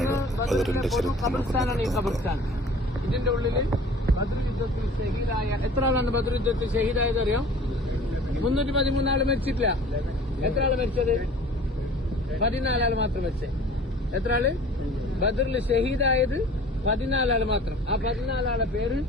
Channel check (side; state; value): both; normal; correlation 0.46